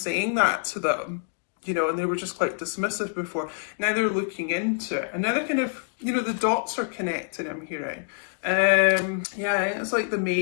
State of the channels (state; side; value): silent; right; 61 dB below the other